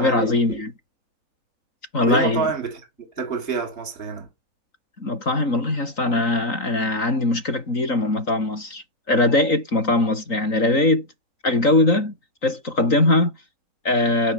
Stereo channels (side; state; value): right; late; 3.9 ms